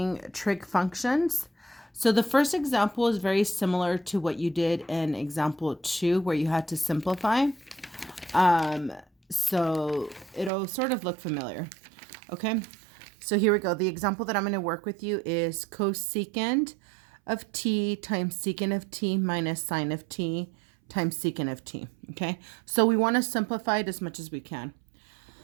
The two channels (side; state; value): left; drops out; at 10.5 s